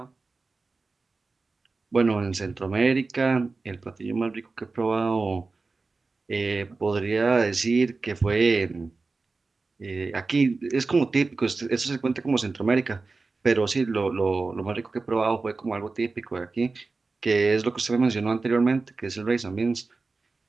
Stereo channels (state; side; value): quieter; left; 3.9 dB